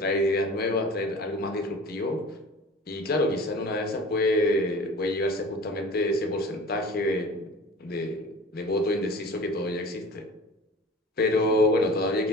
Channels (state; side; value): normal; both; correlation 0.41